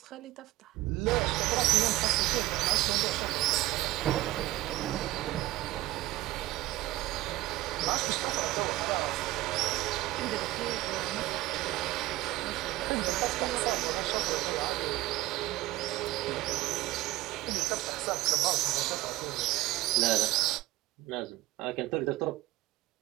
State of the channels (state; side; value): quieter; left; 17.0 dB